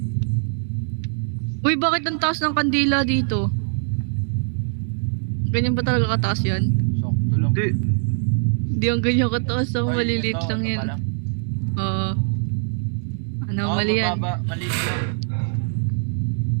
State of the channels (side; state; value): left; silent; digital silence